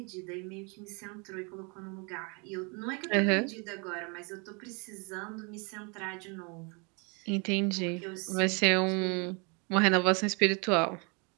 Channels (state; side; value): quieter; left; 32.8 dB